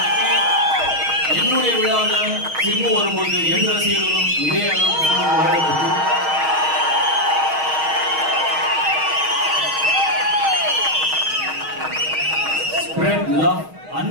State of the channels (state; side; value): late; left; 6.4 ms